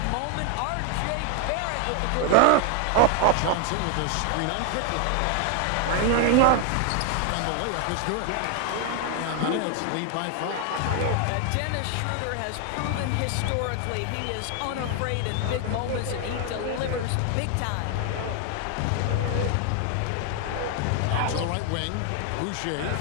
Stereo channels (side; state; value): both; different; correlation 0.01